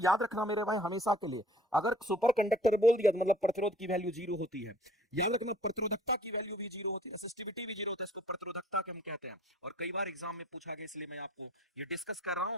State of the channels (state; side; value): normal; both; correlation 0.53